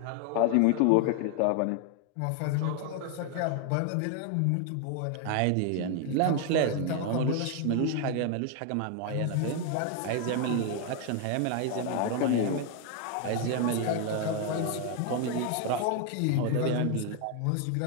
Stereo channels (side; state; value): both; different; correlation 0.01